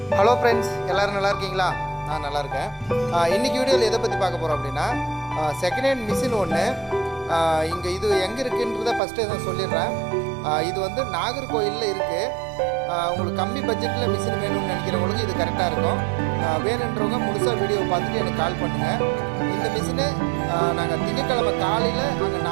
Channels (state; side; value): drops out; left; at 9.0 s